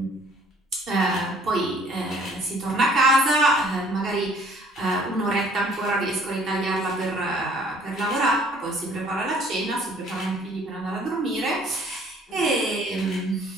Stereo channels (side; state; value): both; normal; correlation 0.58